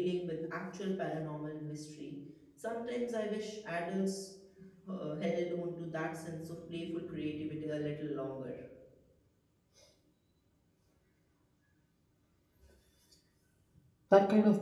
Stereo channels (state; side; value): identical; both; correlation 1.00